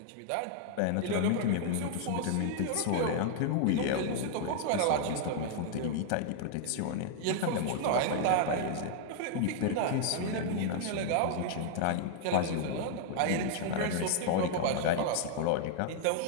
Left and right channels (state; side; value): different; both; correlation 0.00